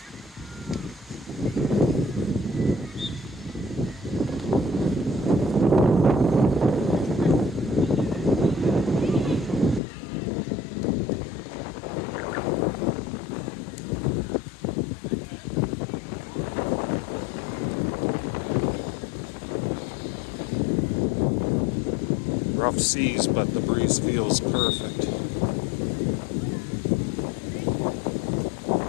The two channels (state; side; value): drops out; right; at 9.8 s